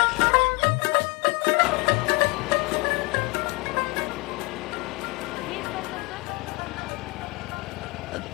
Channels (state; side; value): quieter; right; 26.8 dB